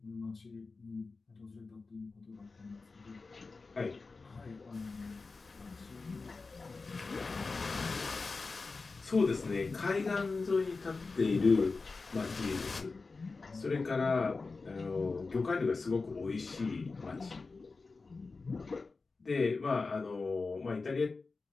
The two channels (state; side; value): quieter; right; 4.0 dB